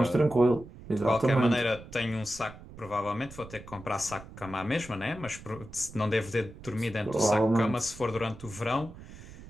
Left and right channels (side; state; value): right; noise; rumble, 16 dB below the sound